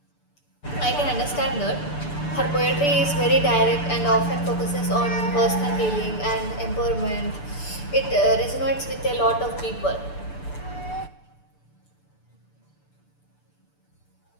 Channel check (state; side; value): late; right; 6.8 ms